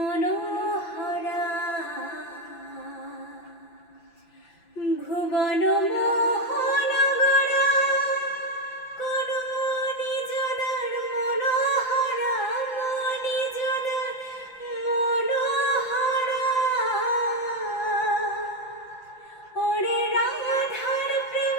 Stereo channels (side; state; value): right; late; 5.9 ms